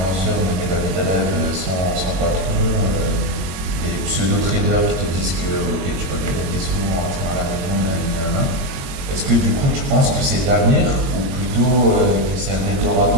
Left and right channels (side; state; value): left; late; 22 ms